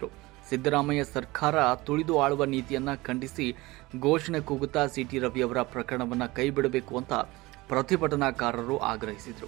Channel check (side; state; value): left; quieter; 21.0 dB